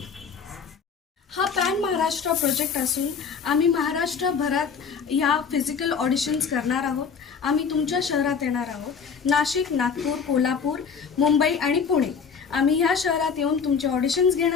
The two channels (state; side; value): quieter; right; 6.1 dB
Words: हा पॅन महाराष्ट्र प्रोजेक्ट असून आम्ही महाराष्ट्रभरात ह्या फिजिकल ऑडिशन्स करणार आहोत। आम्ही तुमच्या शहरात येणार आहोत, नाशिक, नागपूर, कोल्हापूर, मुंबई आणि पुणे। आम्ही ह्या शहरात येऊन तुमचे ऑडिशन्स